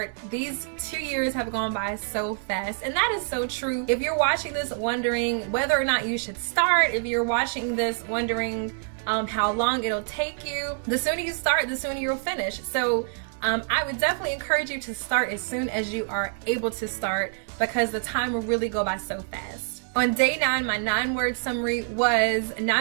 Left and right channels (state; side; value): silent; left; digital silence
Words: These 2 years have gone by so fast, and that is so true. If you're watching this wondering whether or not you should start, if you're watching this wondering how long it'll take you, the sooner you start, the sooner you'll finish. So I would definitely encourage you to start as soon as you are able to start, because the time will really go by so fast. On day 9, my 9-word summary was